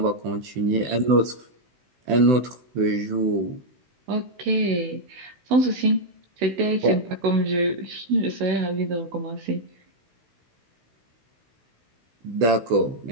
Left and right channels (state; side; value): late; left; 16 ms